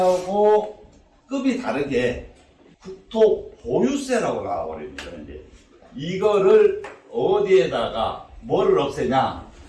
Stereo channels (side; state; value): both; identical; correlation 1.00